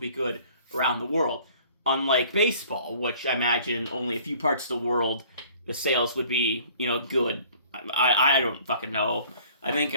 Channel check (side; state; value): both; inverted; correlation -0.52